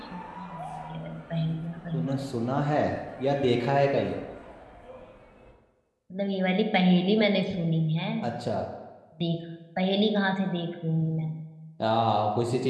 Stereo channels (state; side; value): identical; both; correlation 1.00